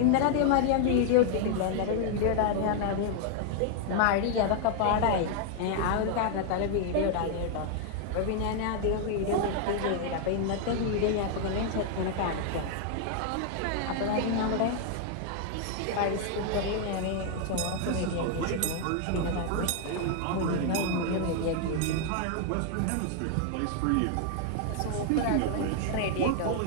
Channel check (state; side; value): different; both; correlation 0.00